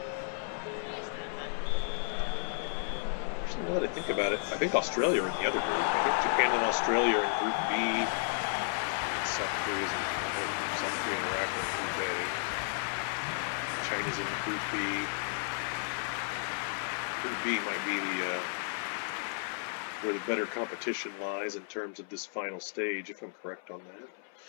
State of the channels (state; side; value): silent; right; 56 dB below the other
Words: Actually, now that I think about it, I think Australia are in the other group. I think Japan and Australia are in Group B. And South Korea and Iraq are in Group A. China's in Group B. Group B might be where the better competition lies in terms of this final stage, if I'm correct on that.